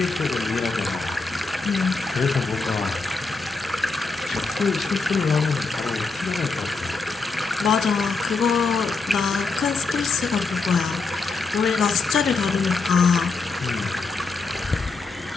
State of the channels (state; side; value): quieter; right; 4.1 dB